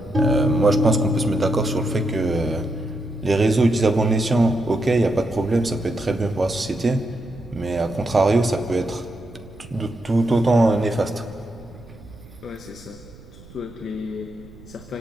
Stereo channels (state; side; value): noise; right; rumble, 21 dB below the sound